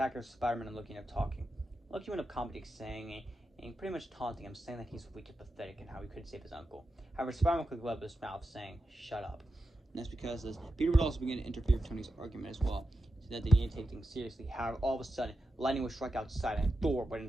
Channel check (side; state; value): both; normal; correlation 0.89